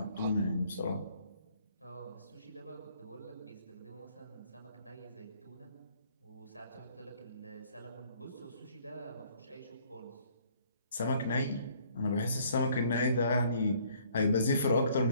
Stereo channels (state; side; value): inverted; both; correlation -0.62